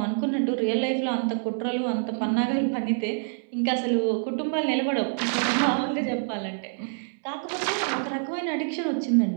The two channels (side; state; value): left; silent; 59 dB below the other